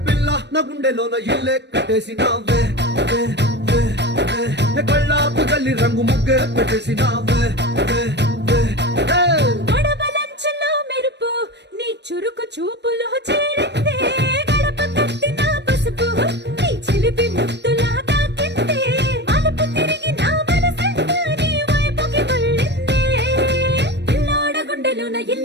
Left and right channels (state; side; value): late; left; 0.50 ms